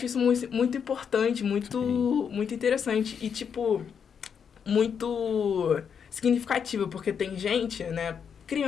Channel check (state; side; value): quieter; right; 7.1 dB